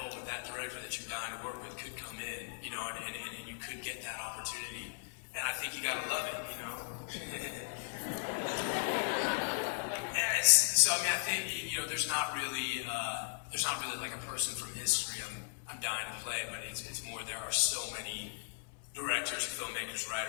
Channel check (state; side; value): silent; right; 53 dB below the other